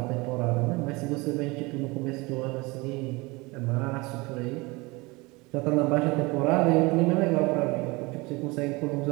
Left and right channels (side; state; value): left; quieter; 24.4 dB